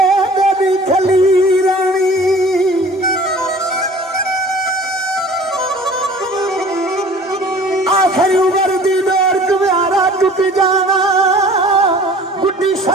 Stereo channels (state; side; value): normal; both; correlation 0.48